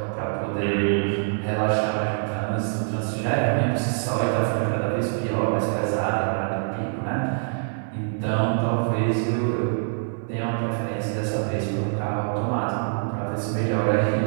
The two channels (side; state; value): left; silent; digital silence